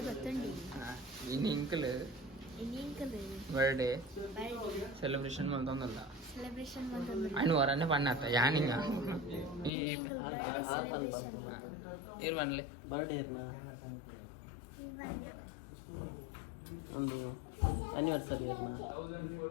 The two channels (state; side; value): drops out; right; at 9.7 s